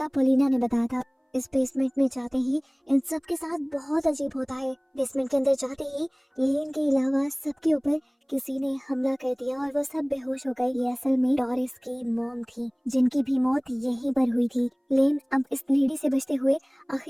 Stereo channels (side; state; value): both; identical; correlation 1.00